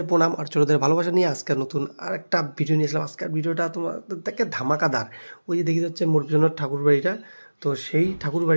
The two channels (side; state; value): both; inverted; correlation -1.00